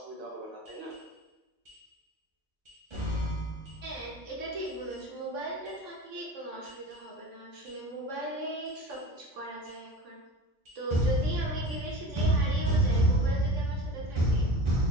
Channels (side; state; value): both; normal; correlation 0.35